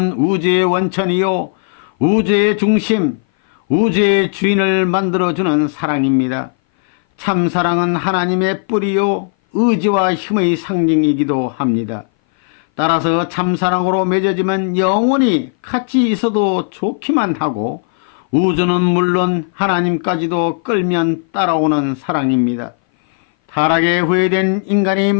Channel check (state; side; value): silent; right; 59 dB below the other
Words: 우주의 원천이요 우주의 중심, 우주의 주인을 만들어주는 사랑입니다. 참사랑은 하나님의 뿌리요 의지와 힘의 상징이기도 합니다. 따라서 참사랑으로 맺어지면 영원히 같이 있어도 좋기만 하고 우주는 물론 하나님까지도 끌면 따라오는 사랑입니다. 타락에 후회된 인간이